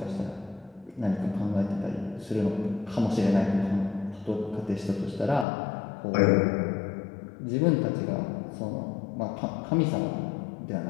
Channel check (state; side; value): drops out; right; at 5.5 s